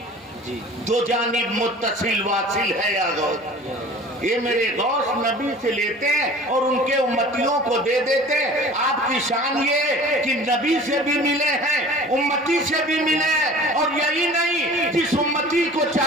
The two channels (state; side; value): normal; both; correlation 0.44